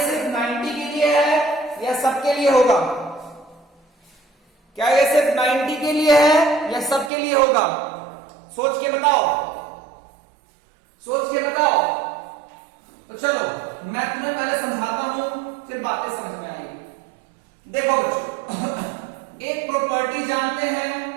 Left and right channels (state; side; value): drops out; left; at 7.1 s